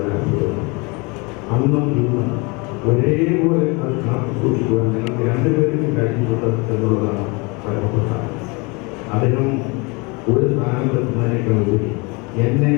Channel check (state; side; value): quieter; right; 28.5 dB